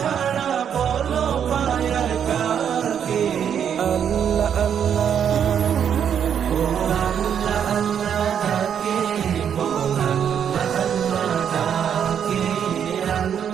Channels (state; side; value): quieter; left; 8.4 dB